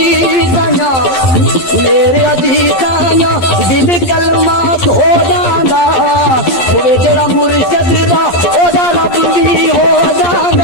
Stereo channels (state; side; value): late; right; 11 ms